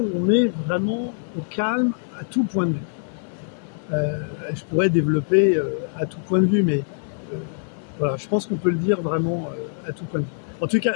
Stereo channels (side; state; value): right; silent; digital silence